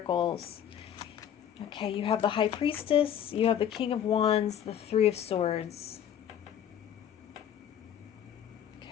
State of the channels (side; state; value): right; quieter; 9.6 dB